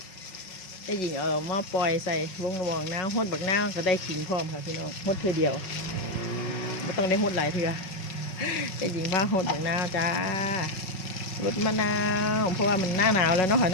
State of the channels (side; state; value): right; late; 5.4 ms